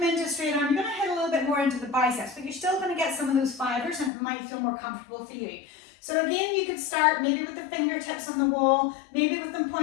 into a straight arm, you're going to hit a little bit more into the biceps, but you're still going to get some of those fibers and it might feel more comfortable for you. So again, you could start maybe with the fingertips on the wall, maybe with them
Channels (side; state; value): right; drops out; at 4.1 s